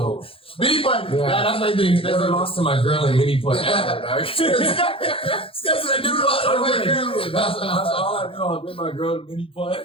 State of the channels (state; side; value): late; right; 0.27 ms